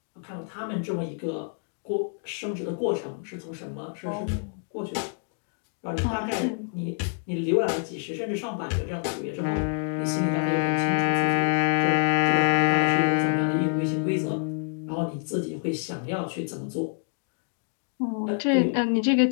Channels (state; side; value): silent; right; 60 dB below the other